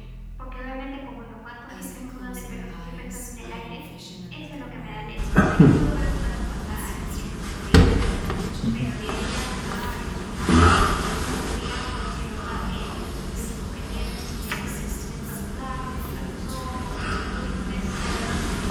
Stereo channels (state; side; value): identical; both; correlation 1.00